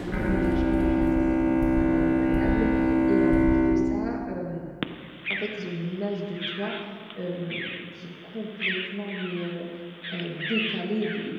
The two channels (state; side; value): identical; both; correlation 1.00